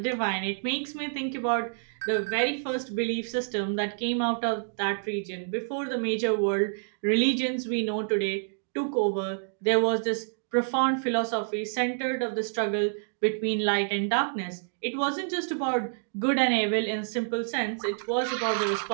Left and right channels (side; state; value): left; silent; digital silence